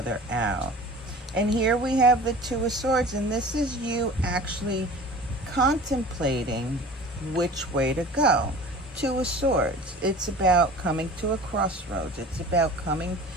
out. And here we have the Two of Swords, and this is you actually contemplating which way to go. Two of Swords, it's about coming to a crossroads. It's about coming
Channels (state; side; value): normal; both; correlation 0.41